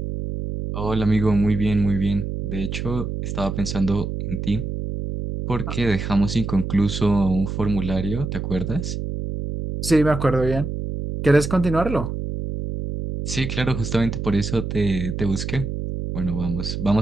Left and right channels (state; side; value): noise; right; hum, 4 dB below the sound